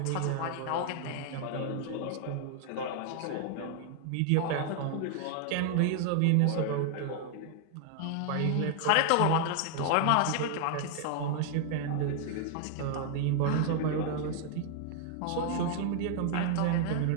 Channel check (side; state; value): both; different; correlation 0.00